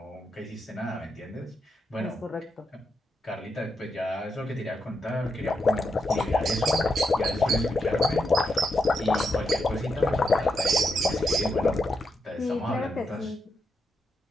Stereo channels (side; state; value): both; normal; correlation 0.82